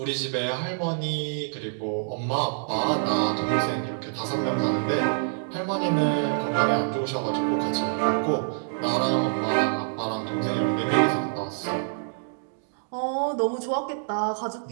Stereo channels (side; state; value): left; silent; digital silence